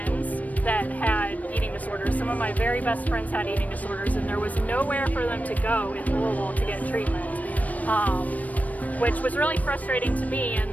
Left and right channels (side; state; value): right; late; 0.072 ms